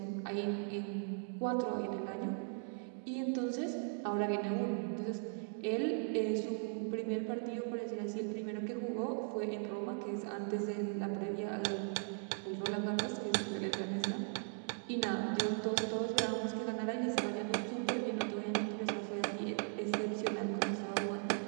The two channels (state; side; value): silent; left; 52 dB below the other